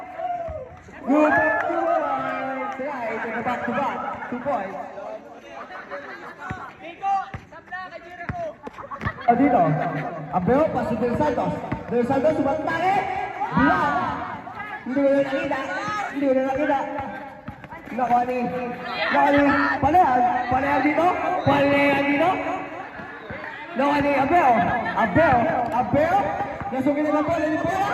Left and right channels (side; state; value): both; identical; correlation 1.00